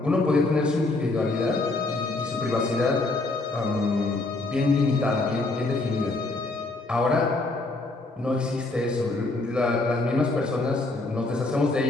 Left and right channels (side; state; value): right; quieter; 3.1 dB